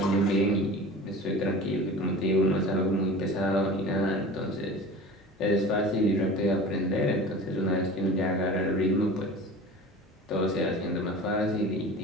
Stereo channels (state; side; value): normal; both; correlation 0.38